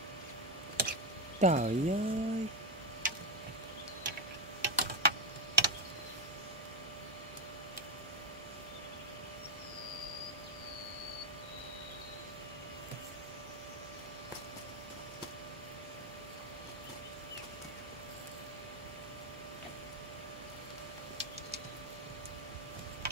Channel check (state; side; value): normal; both; correlation 0.06